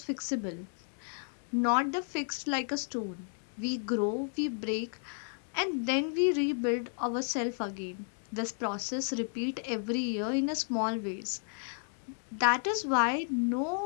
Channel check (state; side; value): silent; right; digital silence